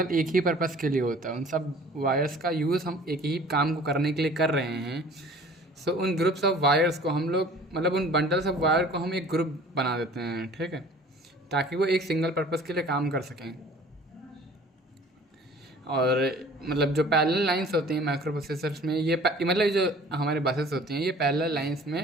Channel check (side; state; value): both; normal; correlation 0.48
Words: एक ही पर्पज़ के लिए होता है। उन सब वायर्स का यूज़ हम एक ही काम को करने के लिए कर रहे हैं। सो उन ग्रुप्स ऑफ वायर्स को हम लोग मतलब उन बंडल्स ऑफ वायर को हम एक ग्रुप बना देते हैं, ठीक है, ताकि वो एक सिंगल पर्पज़ के लिए काम कर सकें। और मतलब जो पैरेलल लाइंस होती हैं माइक्रो प्रोसेसर्स में, मतलब जो हमारे बसेस होती हैं ये पैरेलल लाइंस